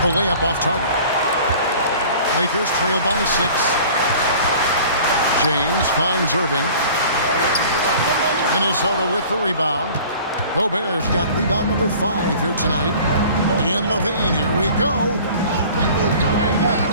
The layup off target. Lakers trail by 6. James finds Irving. Minnesota with the rebound. Gobert's got rebound number 5 here tonight. And LaVine, here we go.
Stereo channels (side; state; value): both; inverted; correlation -0.46